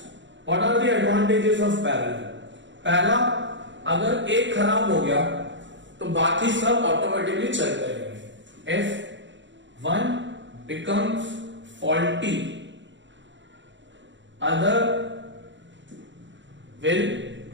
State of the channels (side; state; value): left; late; 0.54 ms